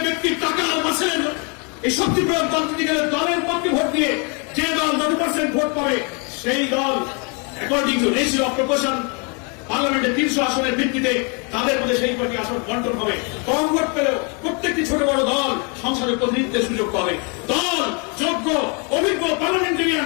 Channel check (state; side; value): quieter; right; 34.7 dB